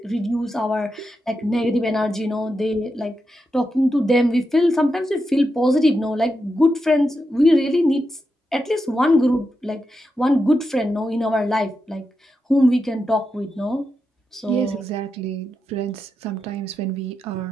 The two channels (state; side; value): normal; both; correlation 0.87